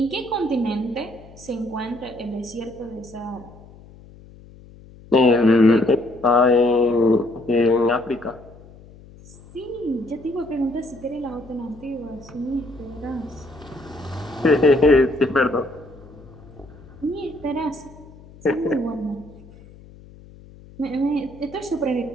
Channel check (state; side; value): noise; left; hum, 21 dB below the sound